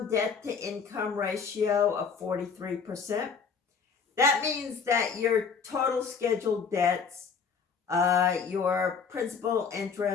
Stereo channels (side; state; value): right; quieter; 5.7 dB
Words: debt to income ratio of 43%. That means that your total scheduled debts, your principal,